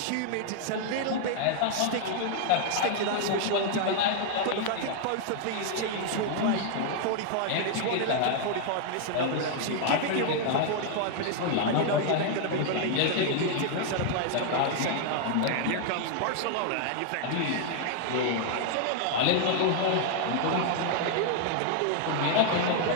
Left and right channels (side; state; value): both; different; correlation 0.00